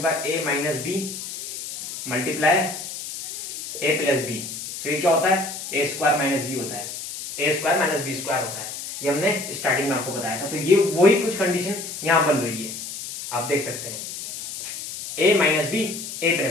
है, ए माइनस बी मल्टीप्लाई ए प्लस बी। सो ये क्या होता है, ए स्क्वायर माइनस बी होता है, ए स्क्वायर माइनस बी स्क्वायर होता है। ये हमने स्टार्टिंग में आपको बताया था। तो ये वही कुछ कंडीशन यहां बन रही है, आप देख सकते हैं, ए माइनस बी ए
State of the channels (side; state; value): left; noise; hiss, 8 dB below the sound